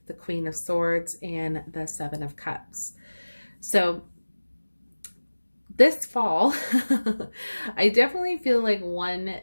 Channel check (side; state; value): both; inverted; correlation -1.00